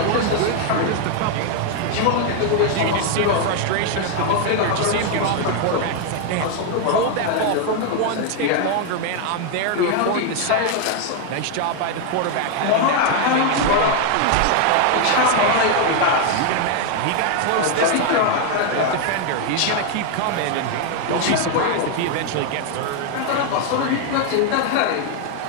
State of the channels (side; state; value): both; different; correlation 0.01